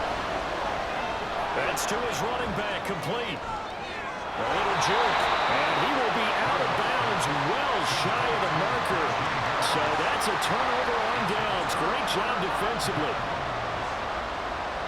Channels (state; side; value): identical; both; correlation 1.00